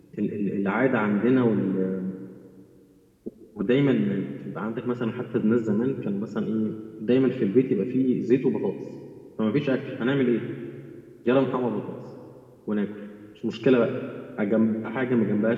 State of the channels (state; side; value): identical; both; correlation 1.00